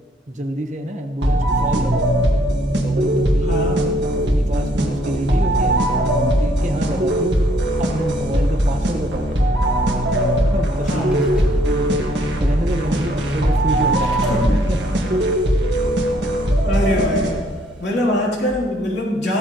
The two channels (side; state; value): both; normal; correlation 0.65